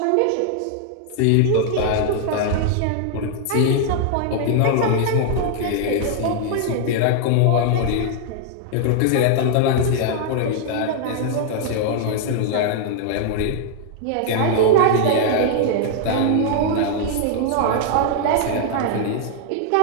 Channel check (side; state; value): both; different; correlation 0.00